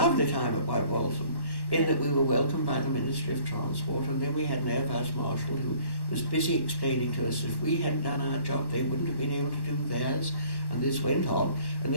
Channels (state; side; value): late; right; 1.1 ms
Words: time at White Waltham, in that we were welcomed by the Ministry of Transport, and then we had an Air Vice Marshal who was busy explaining to us if we hadn't done our job, they wouldn't have been able to do theirs. And this went on, and